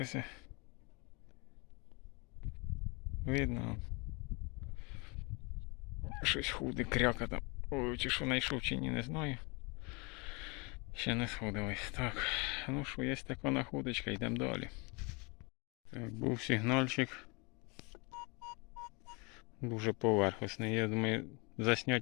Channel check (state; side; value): quieter; right; 29.4 dB